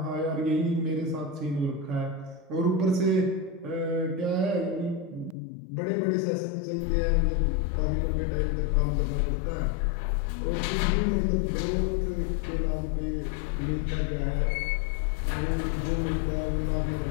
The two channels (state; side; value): drops out; right; at 5.4 s